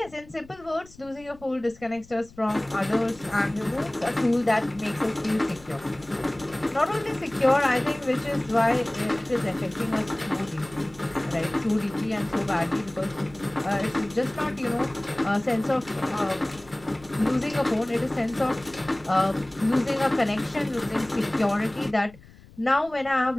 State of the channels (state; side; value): noise; left; rumble, 23 dB below the sound